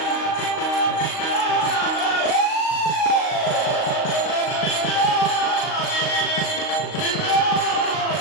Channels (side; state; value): right; late; 38 ms